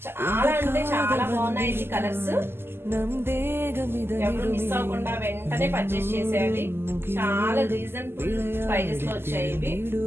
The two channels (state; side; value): late; left; 0.11 ms